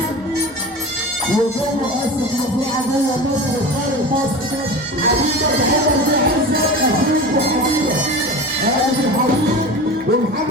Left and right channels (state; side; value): normal; both; correlation 0.31